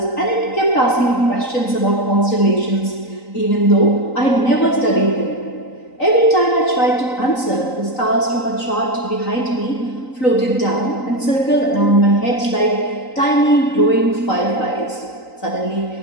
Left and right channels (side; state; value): right; late; 3.9 ms